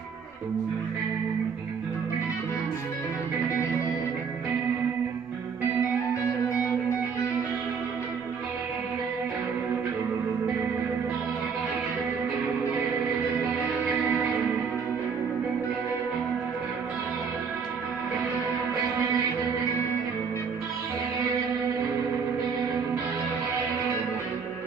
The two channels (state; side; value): quieter; left; 5.9 dB